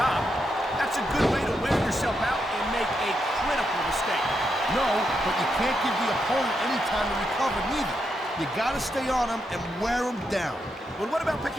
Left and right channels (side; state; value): both; normal; correlation 0.83